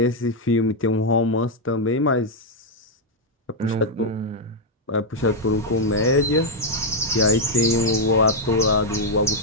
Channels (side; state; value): both; normal; correlation -0.01